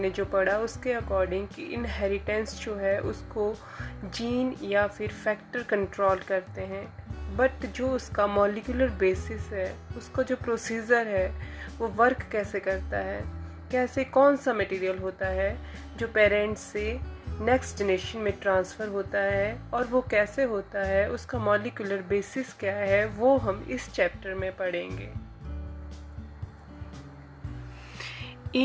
जो पढ़ा उसके अकॉर्डिंग कि इनहेरिटेंस जो है उसको जीन या फिर फैक्टर कंट्रोल करते हैं, बट जो उसका मॉलिक्यूलर बेसिस है, उसका जो प्रोसीजर है वो वर्क कैसे करता है, कैसे कौन सा मटेरियल होता है जो पेरेंट्स से नेक्स्ट जनरेशन में ट्रांसफ़र होता है और वो कैसे होता है, उसका मॉलिक्यूलर बेसिस क्या है, वो हम इस चैप्टर में पढ़ेंगे।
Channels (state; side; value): identical; both; correlation 1.00